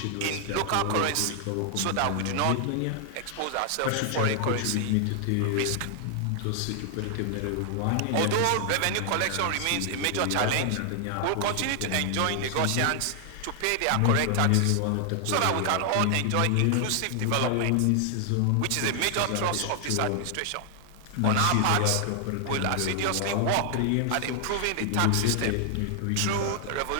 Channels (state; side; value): different; both; correlation 0.00